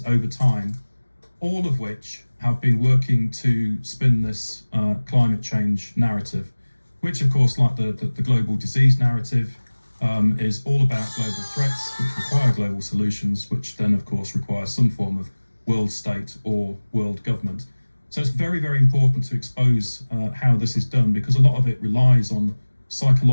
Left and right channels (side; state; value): both; inverted; correlation -1.00